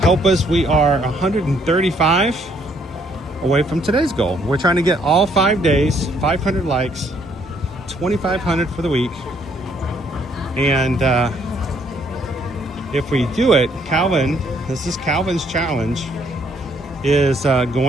help us. We are 135 away from today's goal. We're trying to get all 5 days, 500 likes, 2,500 for the week. And if we do it, Calvin, this is Calvin's challenge, is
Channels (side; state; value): both; normal; correlation 0.67